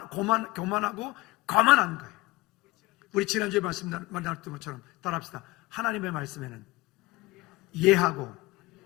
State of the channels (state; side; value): quieter; right; 20.4 dB